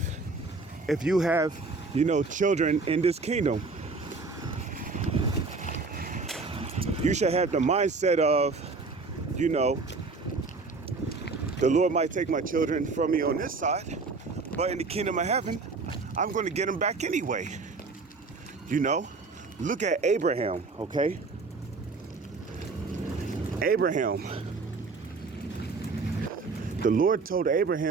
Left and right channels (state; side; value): quieter; left; 4.0 dB